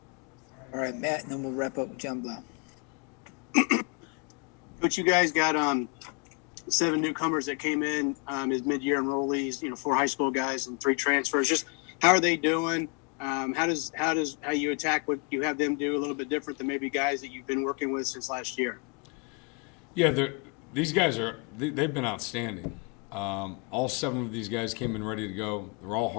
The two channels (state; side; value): quieter; right; 35.0 dB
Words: All right, Matt, and then we'll wrap up with John Blau. Coach, you guys got 7 newcomers that came in as mid-year enrollees. 4 high school guys and 3 transfers. Just how are they doing? How you attack what you have them do a little bit different than maybe guys that you've been working with since last year? Yeah, these guys they've been outstanding. All 7 of these guys came in ready to go. They're all